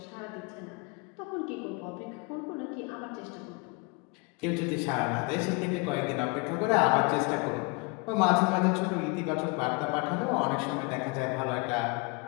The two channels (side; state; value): right; quieter; 28.6 dB